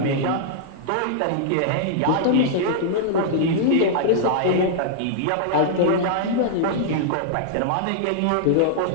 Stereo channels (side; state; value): both; different; correlation -0.01